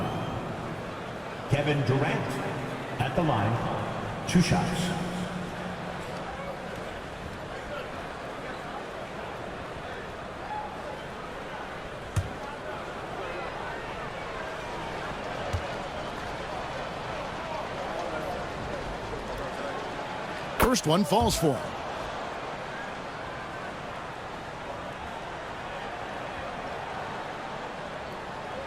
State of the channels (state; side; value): identical; both; correlation 1.00